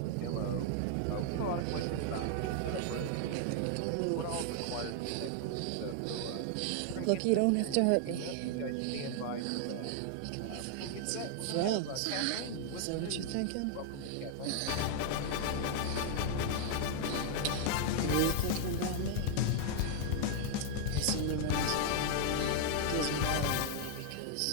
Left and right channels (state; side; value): different; both; correlation 0.00